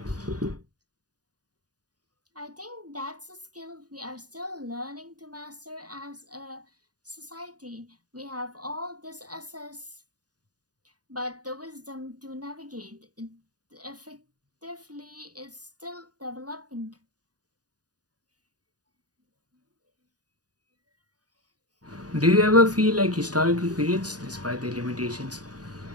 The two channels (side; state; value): left; late; 0.68 ms